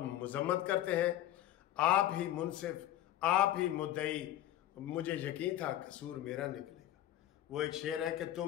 मजम्मत करते हैं। आप ही मुनसिफ, आप ही मुद्दई, मुझे यकीन था कसूर मेरा निकलेगा। वो एक शेर है कि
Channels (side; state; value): right; quieter; 13.0 dB